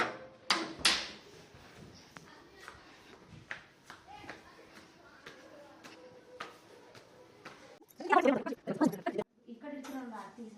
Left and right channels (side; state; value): both; identical; correlation 1.00